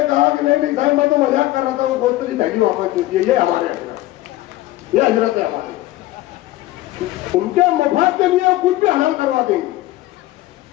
कहा कि नहीं साहब, मैं तो मजाक कर रहा था, वो गोश्त की थैली वापस दे दिए। ये हमारे हजरत, ये हजरत है हमारे। उनके मफाद के लिए कुछ भी हलाल करवा देंगे।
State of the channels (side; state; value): right; quieter; 16.6 dB